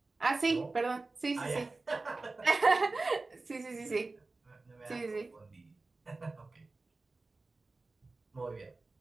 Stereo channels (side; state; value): left; quieter; 3.5 dB